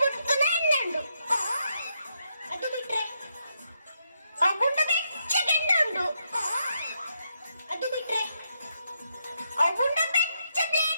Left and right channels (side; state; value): both; inverted; correlation -0.79